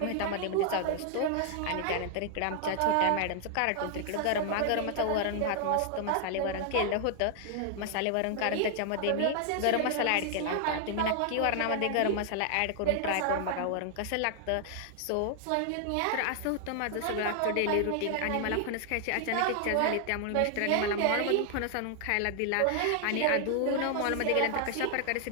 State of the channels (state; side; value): different; both; correlation 0.00